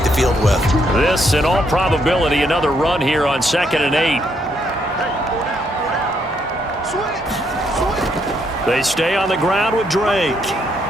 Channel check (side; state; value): both; normal; correlation 0.74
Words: the field with. This, in all probability, another run here on 2nd and 8. They stay on the ground with Drake.